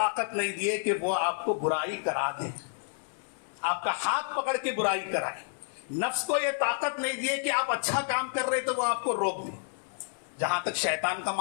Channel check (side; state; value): right; silent; 58 dB below the other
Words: نہیں دیے کہ وہ آپ کو برائی کرا دے, آپ کا ہاتھ پکڑ کے برائی کرائے. نفس کو یہ طاقت نہیں دیے کہ آپ اچھا کام کر رہے تو وہ آپ کو روک دے. جہاں تک شیطان کا